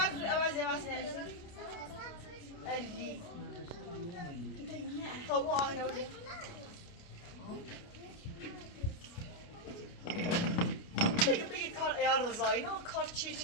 علی خب او آهنه بیا بگی کار ایار رضایی نه کار چی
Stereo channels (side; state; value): right; late; 29 ms